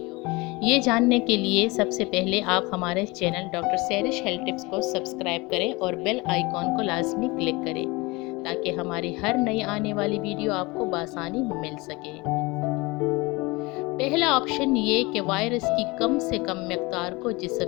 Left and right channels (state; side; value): quieter; right; 24.2 dB